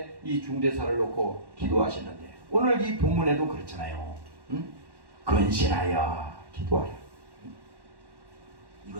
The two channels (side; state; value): left; late; 1.1 ms